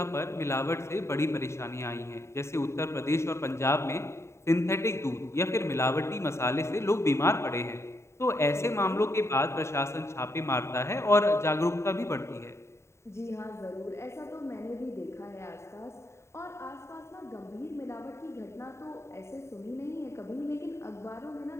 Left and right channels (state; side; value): late; right; 0.13 ms